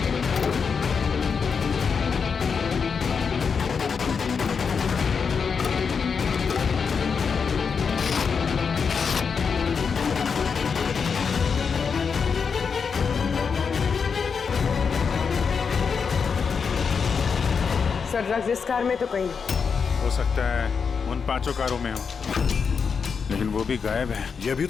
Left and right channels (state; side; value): quieter; right; 5.9 dB